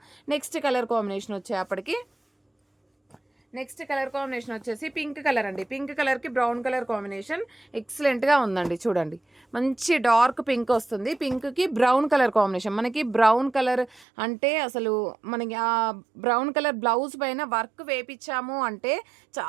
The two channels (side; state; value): left; drops out; at 14.1 s